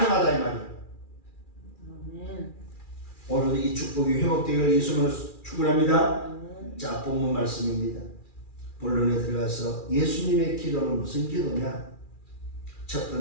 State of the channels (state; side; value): late; right; 2.4 ms